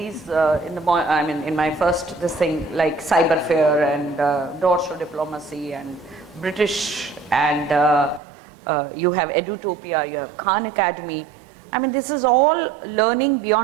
in my first like Cyberfair and Doors to Diplomacy and British and you have Edutopia, you have Khan Academy. I mean, this is all learning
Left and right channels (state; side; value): drops out; left; at 8.2 s